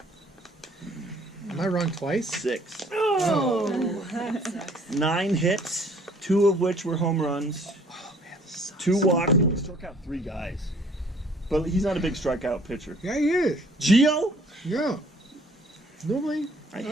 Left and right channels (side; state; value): both; normal; correlation 0.57